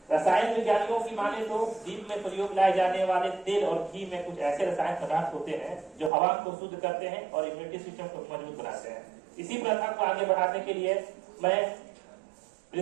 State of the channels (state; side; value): drops out; left; at 6.1 s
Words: रसायन विज्ञानियों की माने तो दीप में प्रयोग लाए जाने वाले तेल और घी में कुछ ऐसे रसायन पदार्थ होते हैं जो हवा को शुद्ध करते हैं और इम्यूनिटी सिस्टम को मजबूत बनाते हैं। इसी प्रथा को आगे बढ़ाने के लिए मैं